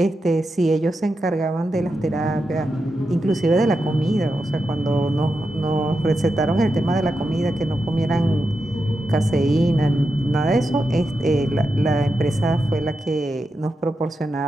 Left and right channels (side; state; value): both; normal; correlation 0.88